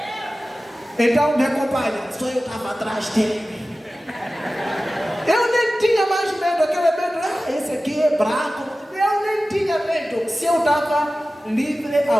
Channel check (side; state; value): both; normal; correlation 0.95